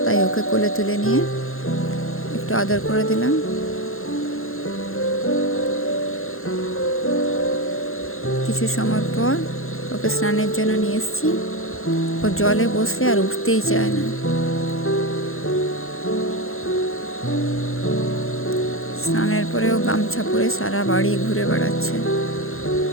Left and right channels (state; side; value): late; right; 0.61 ms